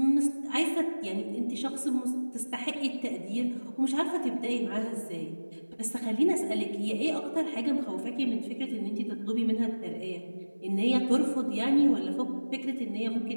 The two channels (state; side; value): inverted; both; correlation -1.00